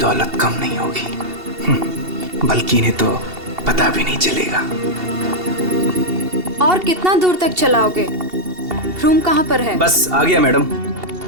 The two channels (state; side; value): late; left; 2.7 ms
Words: कम नहीं होगी, बल्कि इन्हें तो पता भी नहीं चलेगा। और कितना दूर तक चलाओगे? रूम कहाँ पर है? बस आ गया मैडम।